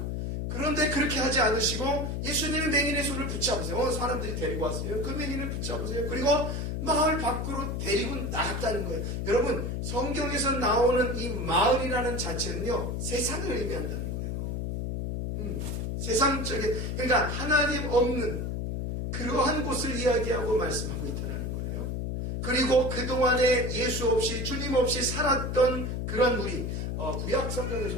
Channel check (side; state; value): left; noise; hum, 2 dB below the sound